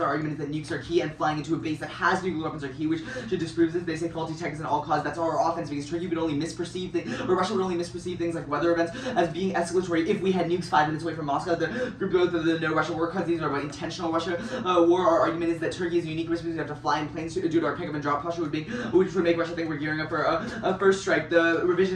Our argument is that nukes are key, and flying into a base that has nuclear weapons are key, which should disprove this. They say faulty tech is an all-cause. That's our offense, because Turkey would only misperceive things, or Russia would only misperceive things like weather events as being escalatory if we had nukes 5 minutes away from Moscow. The group of the no Russia war cause these are about intentional Russia war. Our argument is that Turkey is a unique risk because we have to fly in planes due to our pick up and drop posture, which would make Russia think we're gearing up for a first strike. The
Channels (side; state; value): both; identical; correlation 1.00